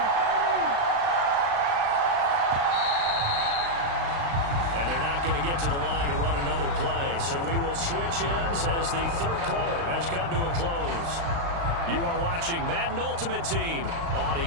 And they're not going to get to the line to run another play. So we will switch ends as the third quarter has come to a close. You are watching Madden Ultimate Team on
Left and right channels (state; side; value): late; left; 35 ms